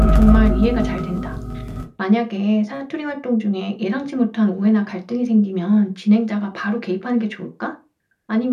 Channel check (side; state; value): both; identical; correlation 1.00